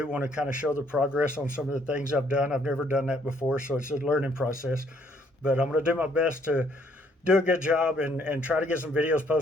want to kind of show the progress on some of the things I've done. I've never done that before, so it's a learning process. But I'm going to do my best to do a good job and try to get some videos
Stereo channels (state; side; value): normal; both; correlation 0.66